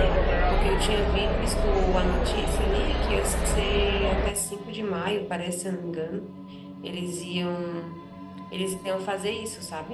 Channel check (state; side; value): identical; both; correlation 1.00